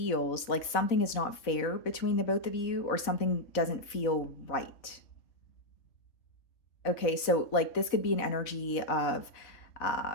like something is not fair between the both of you, or something doesn't feel right. Okay, so like this could be an energy of,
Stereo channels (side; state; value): right; late; 4.0 ms